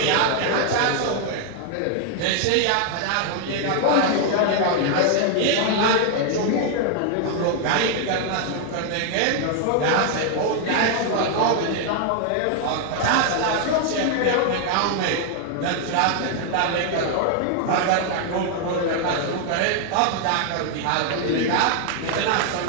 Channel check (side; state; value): both; different; correlation 0.00